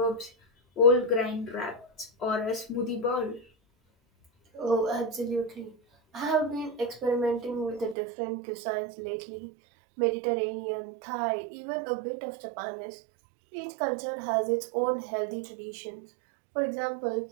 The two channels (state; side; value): drops out; left; at 8.0 s